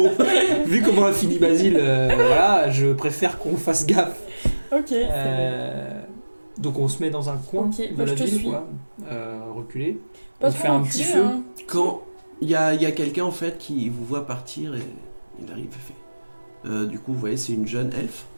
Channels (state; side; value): inverted; both; correlation -1.00